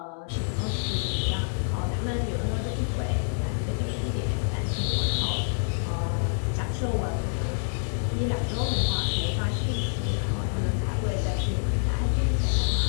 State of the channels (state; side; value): silent; right; digital silence